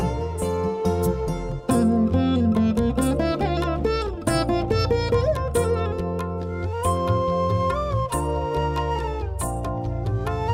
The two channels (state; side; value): identical; both; correlation 1.00